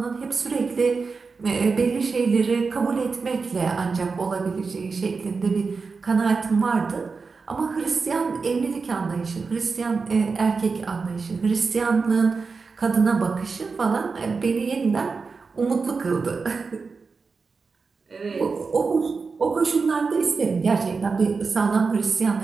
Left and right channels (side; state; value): left; quieter; 4.7 dB